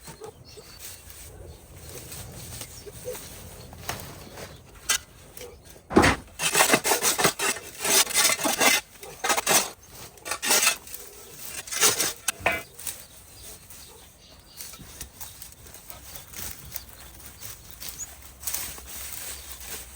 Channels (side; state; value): both; identical; correlation 1.00